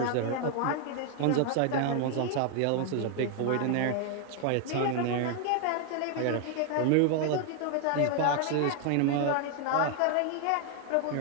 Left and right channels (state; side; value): different; both; correlation 0.00